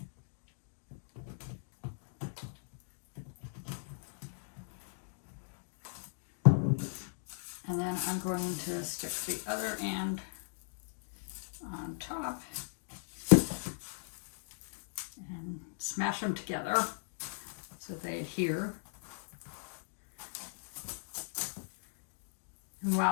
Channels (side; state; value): right; silent; digital silence